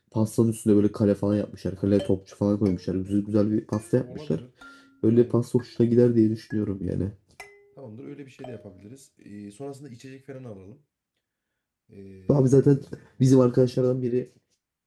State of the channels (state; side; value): identical; both; correlation 1.00